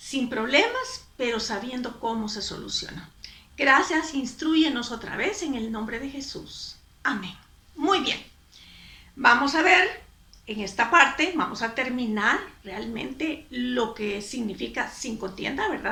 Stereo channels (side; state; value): both; identical; correlation 1.00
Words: problemas, pero sabiendo cómo se soluciona. Gracias, instrúyenos otra vez en el nombre de Jesús. Amén. Muy bien, vamos a ver en esta parte, vamos a terminar realmente lo que significa sin contienda,